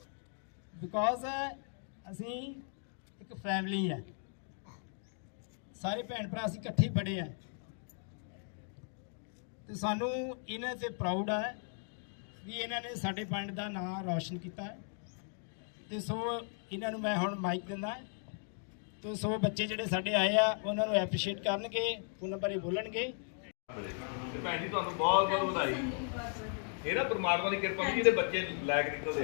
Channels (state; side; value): silent; right; 53 dB below the other